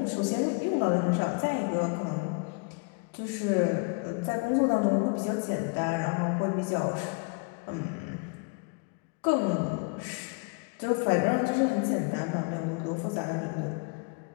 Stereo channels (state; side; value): quieter; right; 32.2 dB